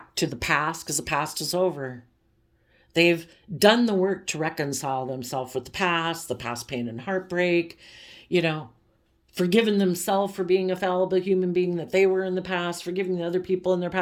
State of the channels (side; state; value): both; identical; correlation 1.00